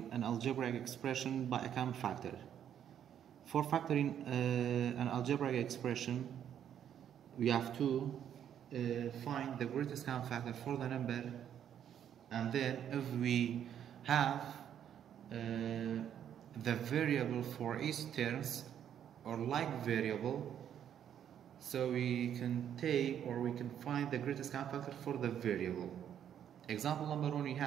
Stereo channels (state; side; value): quieter; left; 9.5 dB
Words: an algebraic expression by a common factor. For factoring an algebraic expression, we have to find the greatest common factor for the number, and then if we have the variable for each terms or like variable, so we can take or we can find the greatest common factor for the variable. Example number 1, we